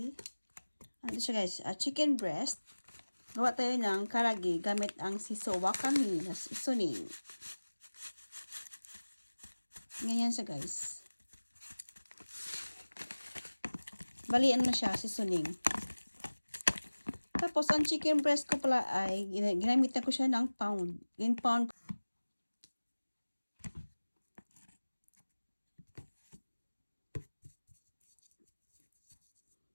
Ano siya guys? Chicken breast. Gawa tayo ng karagi gamit ang siso wakami na seasoning. Ganyan siya guys. Bali, ano na siya, seasoning. Tapos, ang chicken breast ko pala ay, ginamit na ko siya ng pound. In pound.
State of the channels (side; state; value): both; inverted; correlation -1.00